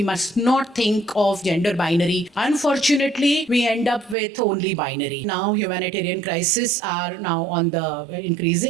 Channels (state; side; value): drops out; left; at 4.2 s